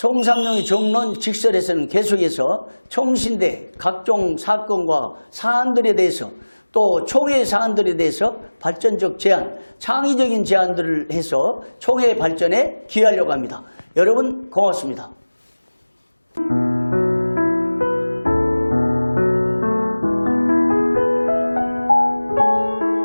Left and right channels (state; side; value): inverted; both; correlation -1.00